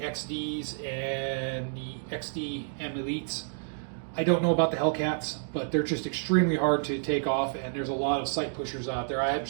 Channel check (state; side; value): silent; left; digital silence